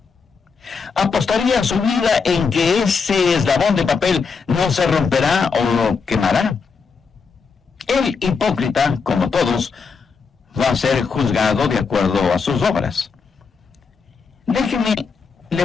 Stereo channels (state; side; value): quieter; right; 5.2 dB